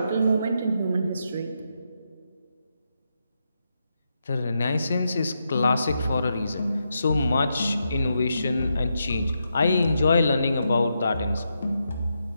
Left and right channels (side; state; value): both; inverted; correlation -0.84